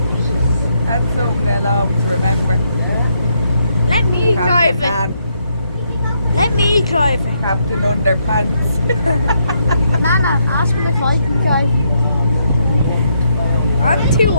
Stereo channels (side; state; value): both; inverted; correlation -0.76